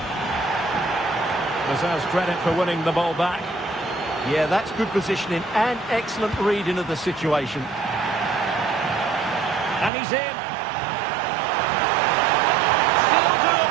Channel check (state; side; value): drops out; left; at 9.9 s